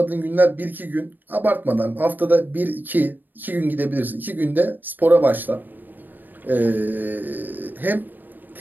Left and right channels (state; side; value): late; left; 0.090 ms